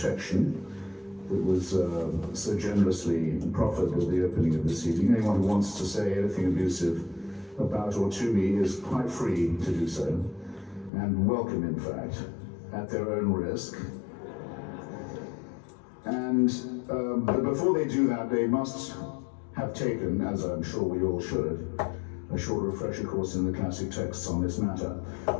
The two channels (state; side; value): drops out; right; at 10.9 s